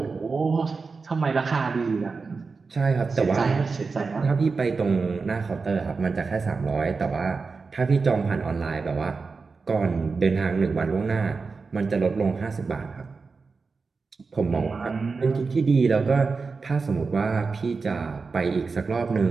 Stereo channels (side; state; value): left; quieter; 4.5 dB